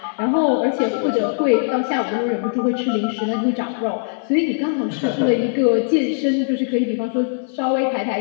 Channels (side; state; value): right; silent; 60 dB below the other